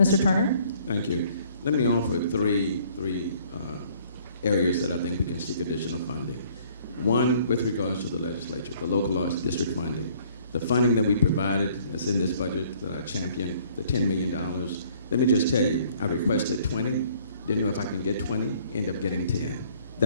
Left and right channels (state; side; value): inverted; both; correlation -0.59